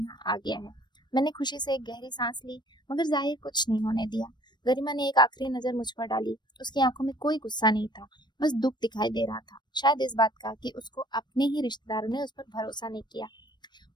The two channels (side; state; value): right; late; 0.21 ms